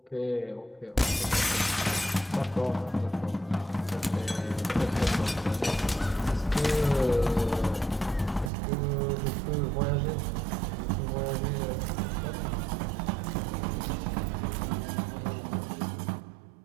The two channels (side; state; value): left; drops out; at 8.5 s